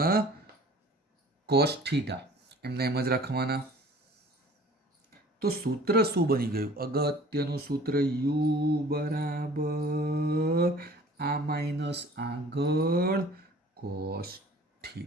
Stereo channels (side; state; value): both; normal; correlation 0.48